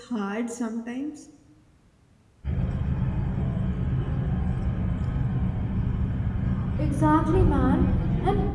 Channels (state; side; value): identical; both; correlation 1.00